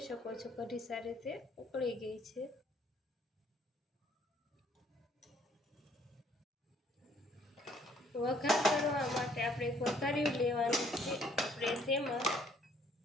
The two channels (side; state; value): both; normal; correlation 0.63